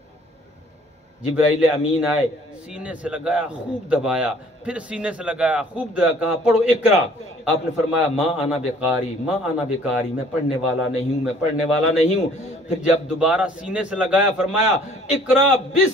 جبرائیل امین آئے، سینے سے لگایا، خوب دبایا، پھر سینے سے لگایا، خوب دبایا، کہا پڑھو اقرا۔ آپ نے فرمایا ما انا بقاری، ما انا بقاری، میں پڑھنے والا نہیں ہوں، میں پڑھنے والا نہیں ہوں۔ پھر جب دوبارہ سینے سے لگایا فرمایا اقرا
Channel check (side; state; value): both; normal; correlation 0.56